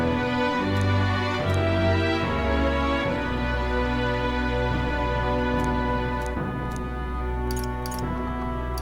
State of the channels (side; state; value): both; identical; correlation 1.00